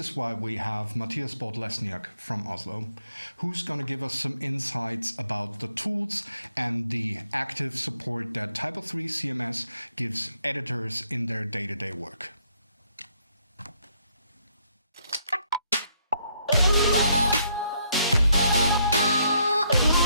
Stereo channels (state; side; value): inverted; both; correlation -0.72